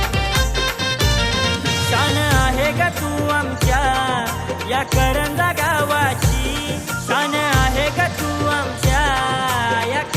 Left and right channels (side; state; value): both; identical; correlation 1.00